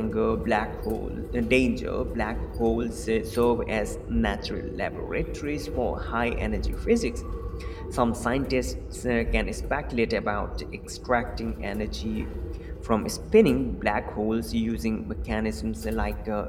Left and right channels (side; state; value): both; identical; correlation 1.00